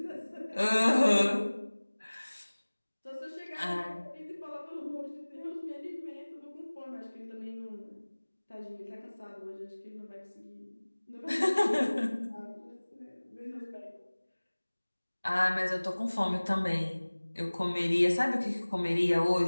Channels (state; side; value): inverted; both; correlation -1.00